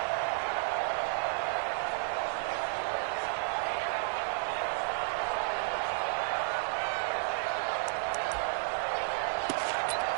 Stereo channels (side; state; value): left; silent; digital silence